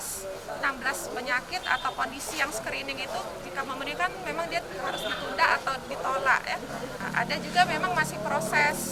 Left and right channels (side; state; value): both; identical; correlation 1.00